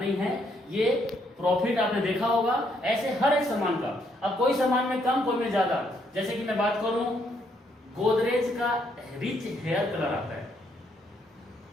नहीं है। ये प्रॉफिट आपने देखा होगा ऐसे हर एक सामान का। अब कोई सामान में कम कोई में ज्यादा, जैसे कि मैं बात करूं गोदरेज का रिच हेयर कलर आता है,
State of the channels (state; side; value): normal; both; correlation 0.72